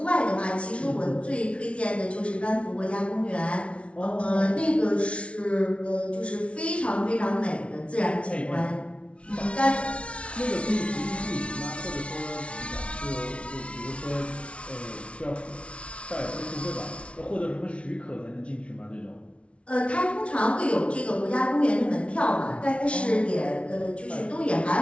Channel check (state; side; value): late; right; 0.061 ms